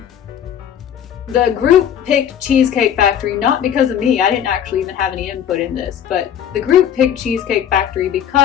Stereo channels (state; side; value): quieter; right; 9.4 dB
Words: The group picked Cheesecake Factory not because of me. I didn't actually even have any input in this, but the group picked Cheesecake Factory